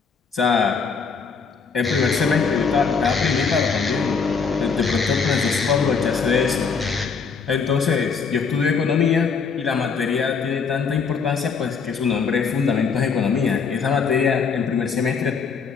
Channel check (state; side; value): quieter; right; 5.5 dB